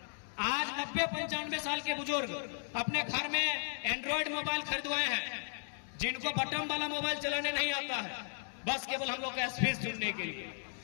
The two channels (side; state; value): right; silent; digital silence